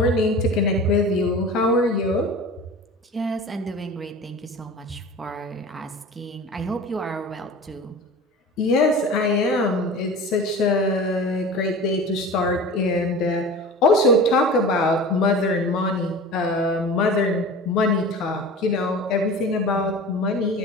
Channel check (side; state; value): both; normal; correlation 0.36